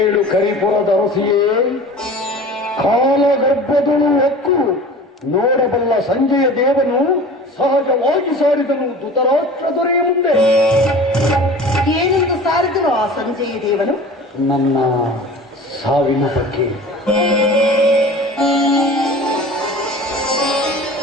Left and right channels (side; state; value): both; normal; correlation 0.40